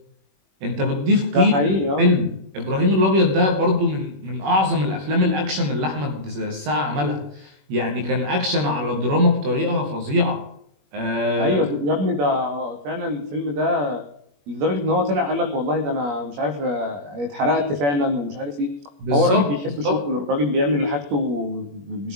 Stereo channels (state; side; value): late; left; 21 ms